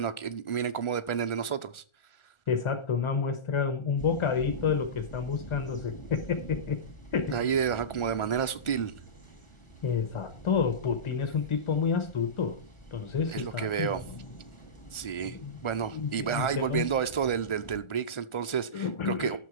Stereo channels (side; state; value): right; late; 1.4 ms